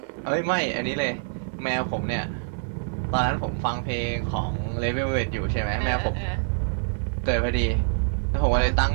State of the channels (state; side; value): silent; left; 56 dB below the other